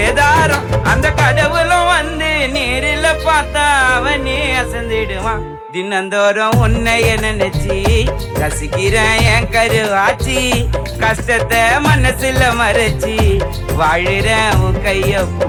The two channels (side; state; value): both; identical; correlation 1.00